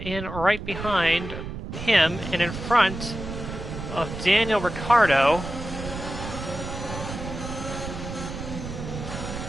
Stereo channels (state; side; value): noise; right; rumble, 8 dB below the sound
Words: in right behind him and in front of Daniel Ricciardo.